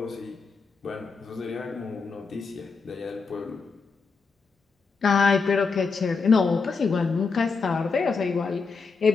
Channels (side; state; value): right; quieter; 4.8 dB